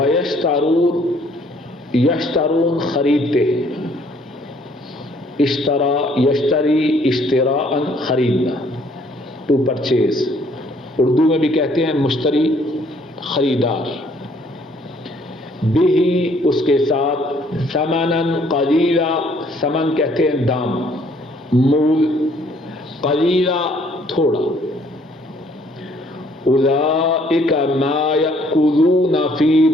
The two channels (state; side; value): normal; both; correlation 0.63